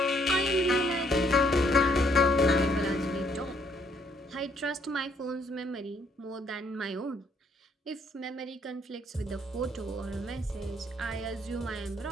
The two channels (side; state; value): both; normal; correlation 0.68